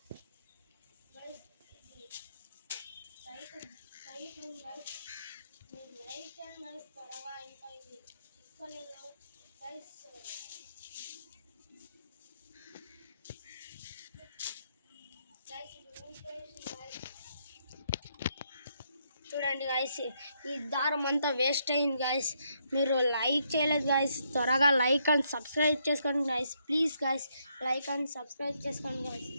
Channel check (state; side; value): inverted; both; correlation -0.75